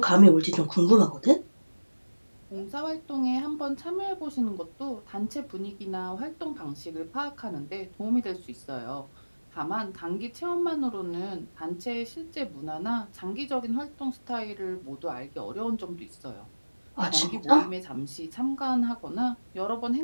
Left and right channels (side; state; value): both; inverted; correlation -1.00